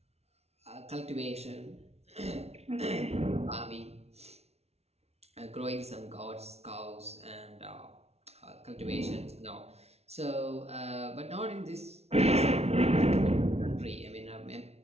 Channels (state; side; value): late; left; 0.31 ms